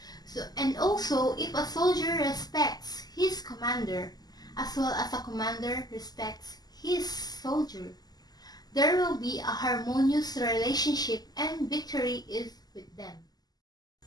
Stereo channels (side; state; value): right; late; 0.20 ms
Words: And also, if a soldier respects his commander, as well as a commander respects his soldier, there will be a harmonious relationship and victory is with them.